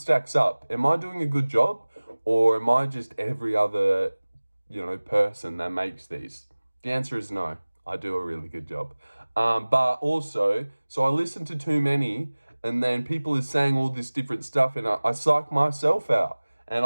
up. Am I doing a good job? Or am I just every other, person that makes these? The answer is no. I do a really good job. But also, so I listen to too many, and then people are saying all this different stuff, and I psych myself out. And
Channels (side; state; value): both; inverted; correlation -1.00